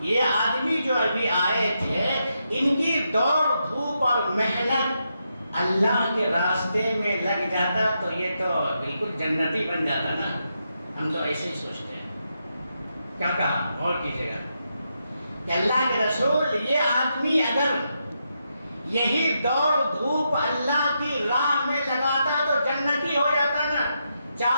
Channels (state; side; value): inverted; both; correlation -0.83